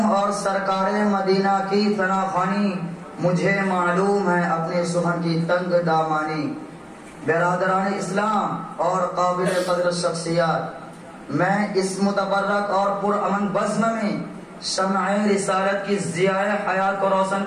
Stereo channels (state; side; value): identical; both; correlation 1.00